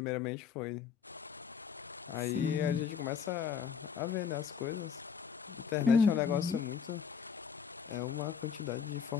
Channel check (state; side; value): quieter; right; 6.9 dB